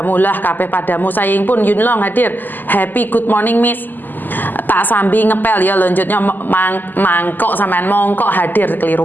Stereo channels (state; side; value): late; right; 0.088 ms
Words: lah, kabeh padamu. Sayang pun Yunlong hadir. Happy good morning Miss. Tak sambil ngepel ya lanjutnya mangkok sampean mongkok hadir, keliru